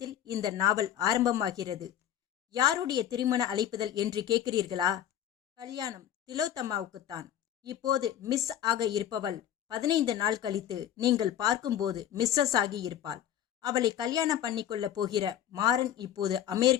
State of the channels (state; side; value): quieter; right; 10.7 dB